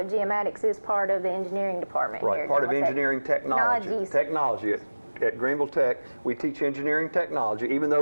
Geomatics is part of the engineering department right, here. Part of engineering technology. At Greenville Tech, we teach engineering technology, even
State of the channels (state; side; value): inverted; both; correlation -1.00